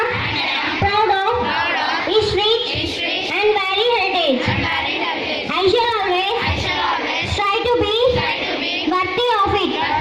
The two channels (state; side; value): identical; both; correlation 1.00